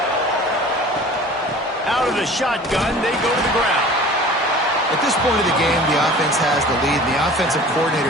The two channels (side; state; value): both; normal; correlation 0.43